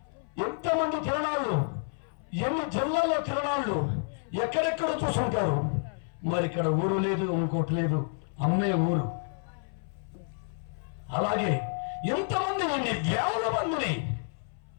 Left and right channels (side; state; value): right; silent; 58 dB below the other